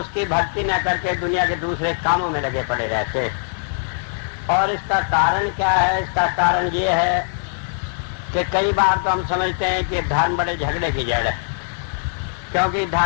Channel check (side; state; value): right; silent; digital silence